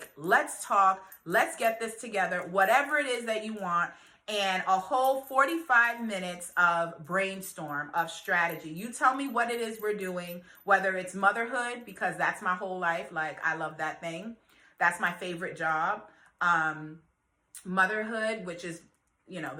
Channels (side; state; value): both; identical; correlation 1.00